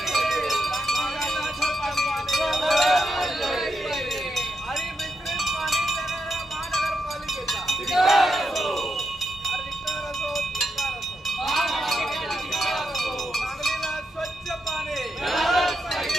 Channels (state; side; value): normal; both; correlation 0.83